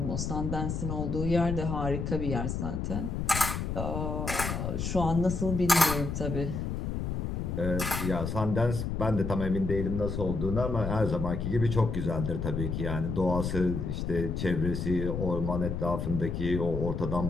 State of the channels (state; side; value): noise; left; rumble, 3 dB below the sound